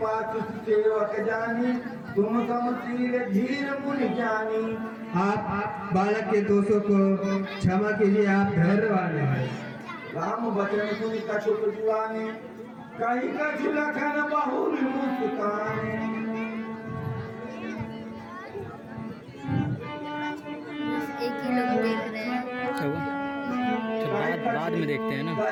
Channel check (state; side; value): identical; both; correlation 1.00